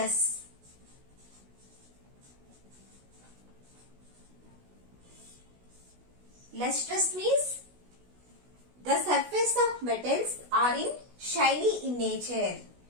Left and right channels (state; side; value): late; left; 16 ms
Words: Lustrous means the surface of metals are shiny in nature.